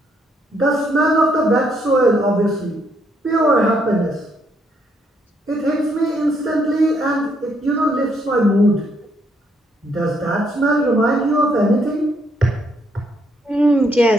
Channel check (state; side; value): normal; both; correlation 0.72